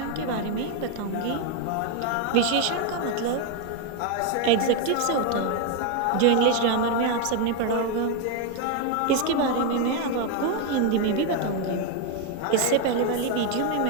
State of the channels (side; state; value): both; different; correlation 0.01